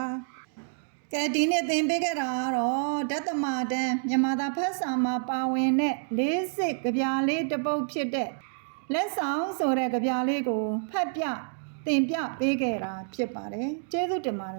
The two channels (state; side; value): silent; left; digital silence